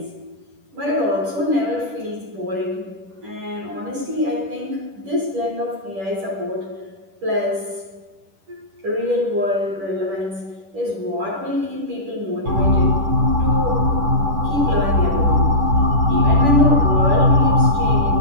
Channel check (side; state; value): left; late; 10 ms